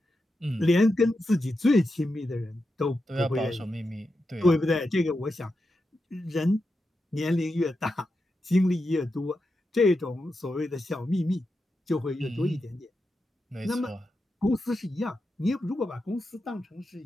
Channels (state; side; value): normal; both; correlation 0.88